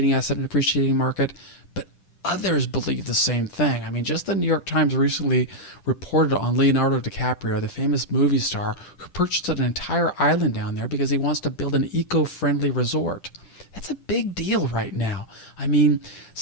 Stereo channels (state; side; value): late; right; 10 ms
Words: asset and appreciating market, but others believe the same thing. I mean, just the New York Times recently reported on Leonardo DiCaprio, the famous movie star, who purchased an entire island down there because he wants to build an eco-friendly resort. That's a big deal right now. I mean,